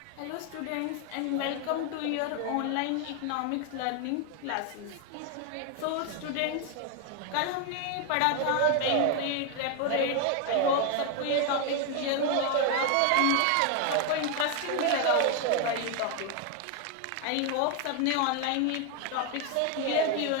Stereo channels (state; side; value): different; both; correlation 0.01